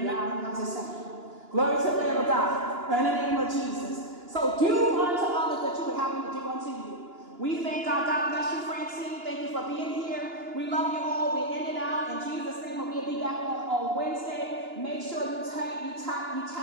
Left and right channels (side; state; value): left; late; 2.9 ms